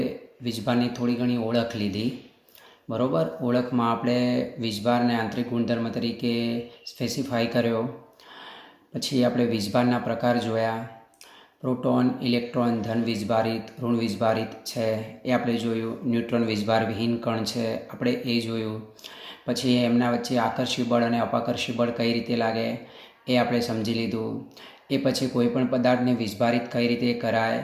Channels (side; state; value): both; identical; correlation 1.00